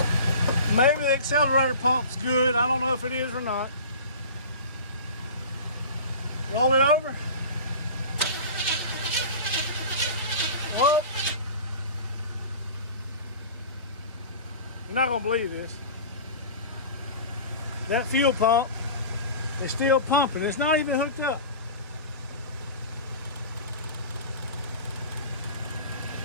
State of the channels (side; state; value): both; inverted; correlation -0.36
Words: Maybe the accelerator pump's good. I don't know if it is or not. Roll it over. Whoa. You're not gonna believe this. That fuel pump is still pumping. It's not even hooked up.